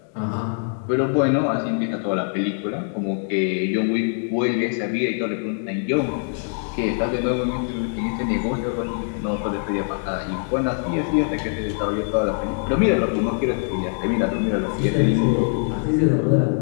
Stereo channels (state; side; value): silent; right; 58 dB below the other